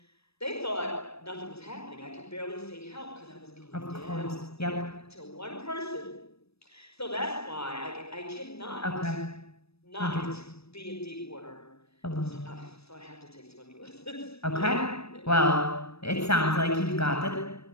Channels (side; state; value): right; late; 0.78 ms